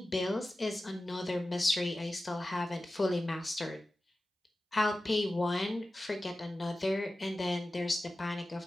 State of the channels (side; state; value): both; normal; correlation 0.95